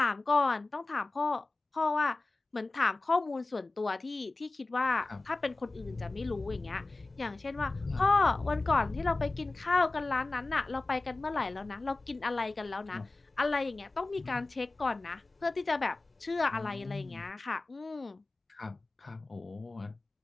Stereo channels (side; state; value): right; quieter; 3.2 dB